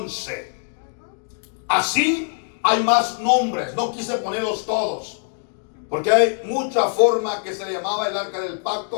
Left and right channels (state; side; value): silent; right; digital silence